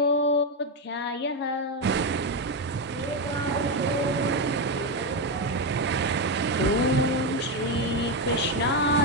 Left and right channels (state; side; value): normal; both; correlation 0.08